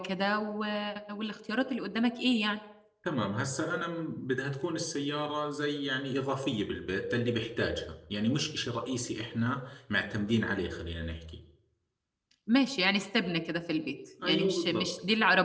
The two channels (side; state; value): both; identical; correlation 1.00